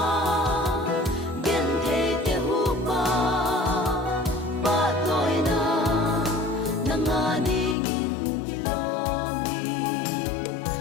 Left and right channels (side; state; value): right; drops out; at 7.8 s